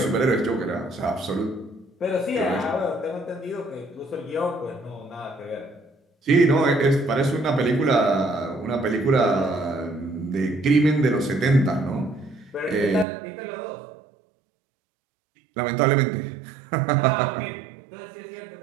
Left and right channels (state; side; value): drops out; left; at 13.1 s